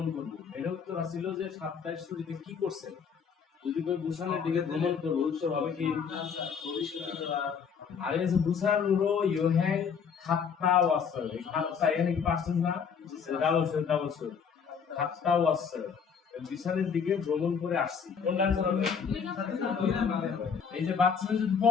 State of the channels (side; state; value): right; quieter; 6.5 dB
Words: করব। এর উত্তর ছিল যে সাপ্তাহিক ছুটিতে কি করছেন। যদি কই বুসানের দিকে ভ্রমণ করব, উত্তর হবে কি আর এই যে বুসানুরো ইয়োহেন খাত্তা ওয়াসাল, এই খাত্তা এখানে কি পার্সেন্ট না, ডাবল শো খাত্তা ওয়াসাল, বিছানের দিকে ভ্রমণ করে আসছি। কোনটা আনসার হবে? এই যে বাচ্চাদের যদি প